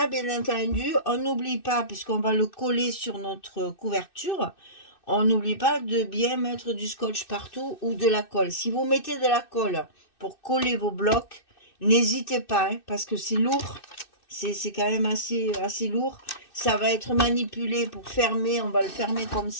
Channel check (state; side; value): late; right; 2.6 ms